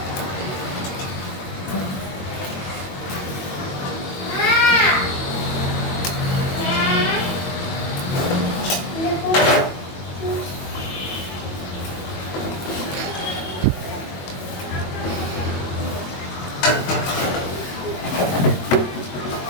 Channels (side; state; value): right; late; 22 ms